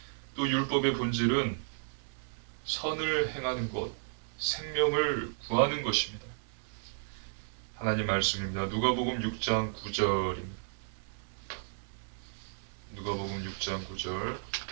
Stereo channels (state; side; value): silent; left; 55 dB below the other